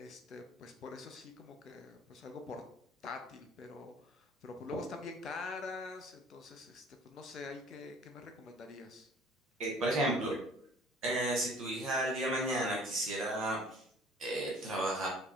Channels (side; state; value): both; normal; correlation 0.52